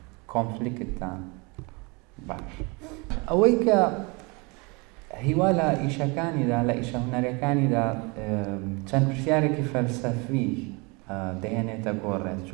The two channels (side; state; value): left; quieter; 28.7 dB